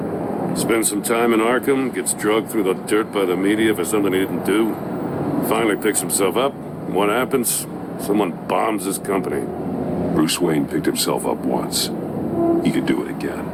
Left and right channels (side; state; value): both; identical; correlation 1.00